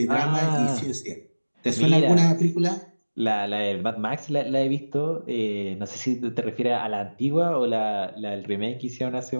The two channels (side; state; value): both; inverted; correlation -1.00